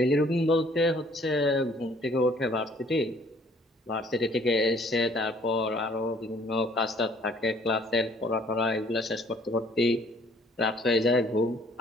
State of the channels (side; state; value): both; normal; correlation 0.59